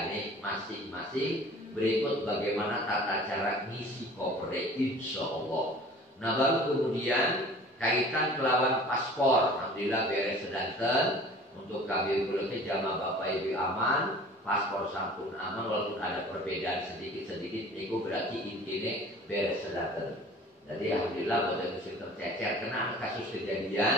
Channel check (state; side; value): normal; both; correlation 0.46